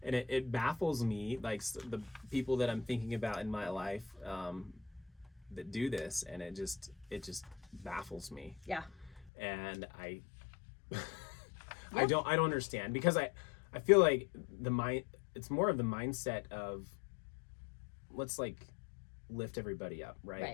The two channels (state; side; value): drops out; right; at 9.3 s